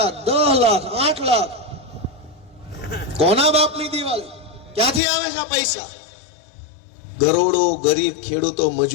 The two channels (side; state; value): right; drops out; at 5.0 s